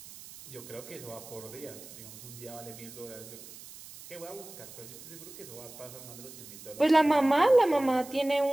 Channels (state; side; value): noise; right; hiss, 16 dB below the sound